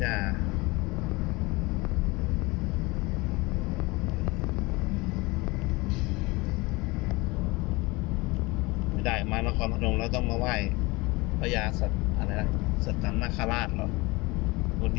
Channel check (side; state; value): right; quieter; 23.8 dB